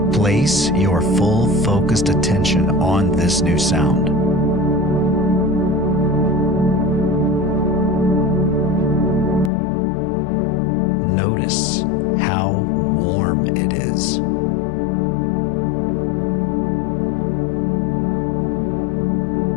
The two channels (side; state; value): right; drops out; at 9.5 s